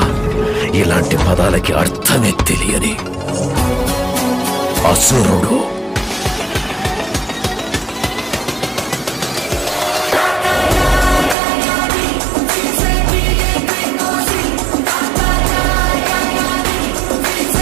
ఇలాంటి పదాలకి అర్థమే తెలియని అసురుడు.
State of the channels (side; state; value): left; drops out; at 11.4 s